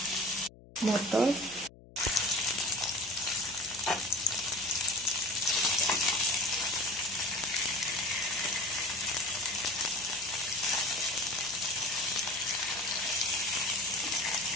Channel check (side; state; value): left; noise; hum, 22 dB below the sound